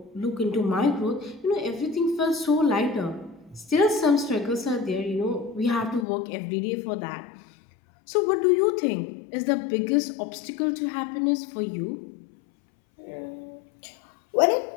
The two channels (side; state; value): right; drops out; at 6.1 s